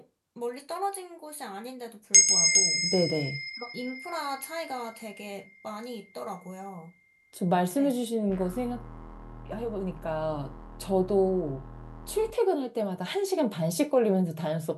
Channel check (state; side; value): identical; both; correlation 1.00